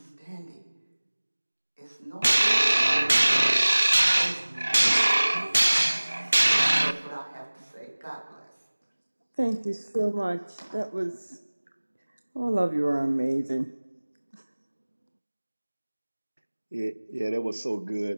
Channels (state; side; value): inverted; both; correlation -1.00